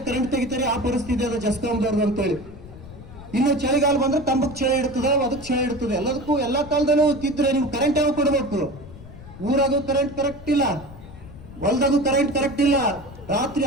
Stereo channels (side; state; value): left; noise; rumble, 16 dB below the sound